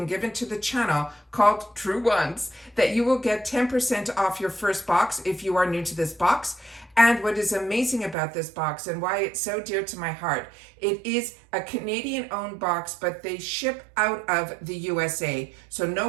given to the channel called Truewants that you will get 10% off your first box if you are new to this box. And what is amazing about this box and why it's so dear to my heart, it is a Canadian-owned box, but they ship out of the USA. So no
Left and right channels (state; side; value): drops out; left; at 8.2 s